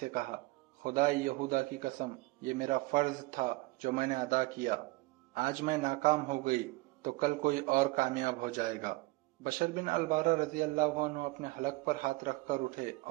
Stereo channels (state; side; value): quieter; left; 22.2 dB